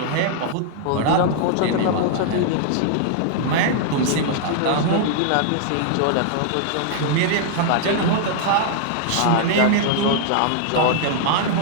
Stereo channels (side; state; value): both; different; correlation -0.01